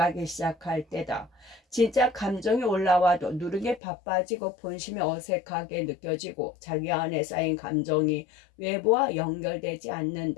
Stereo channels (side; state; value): right; drops out; at 3.8 s